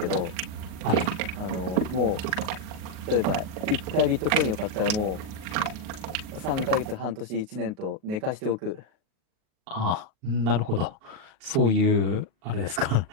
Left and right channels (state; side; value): late; left; 38 ms